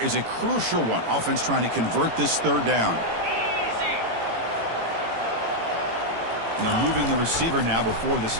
is a crucial one. Offense trying to convert this third down. And they're moving the receiver now before the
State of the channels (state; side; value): late; left; 18 ms